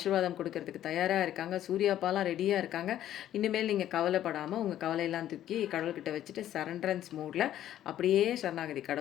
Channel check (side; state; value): right; quieter; 12.0 dB